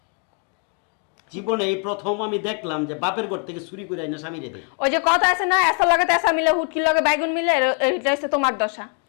জীবনে এই প্রথম আমি দেখলাম যে বাপের ঘর থেকে চুরি করে আইনা স্বামী রে দেয়। ওই যে কথা আছে না, এসার লগে তেসা মিলে, হুটকির লগে বাইগুন মিলে, এটা হচ্ছে তোমার দশা।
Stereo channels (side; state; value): right; quieter; 39.5 dB